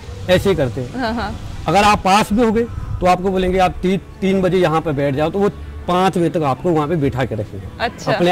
ऐसे ही करते हैं। अगर आप पास भी हो गए तो आपको बोलेंगे आप 3 बजे यहाँ पे बैठ जाओ, तो वो 5 बजे तक आपको वहाँ पे बिठा के रखेंगे। अच्छा। अपने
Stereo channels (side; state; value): both; identical; correlation 1.00